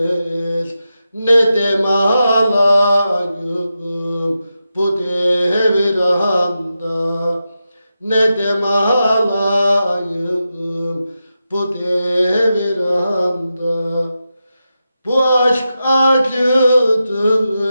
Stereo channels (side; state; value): both; inverted; correlation -0.89